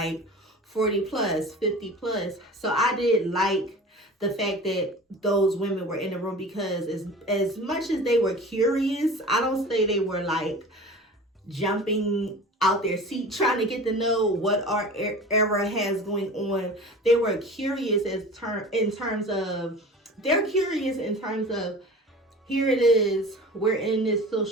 40 plus, 50 plus. So I did like the fact that those women were in the room, because as much as they were curious, I don't say they were like jumping out their seat trying to get to know what our era has going on. They were curious in terms of here it is, we're in this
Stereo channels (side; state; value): both; normal; correlation 0.38